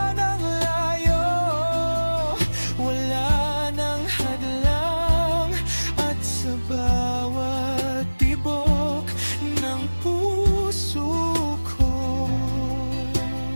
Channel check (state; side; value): inverted; both; correlation -1.00